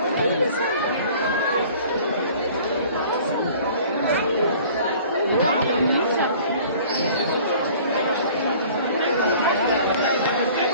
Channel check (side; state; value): both; inverted; correlation -0.49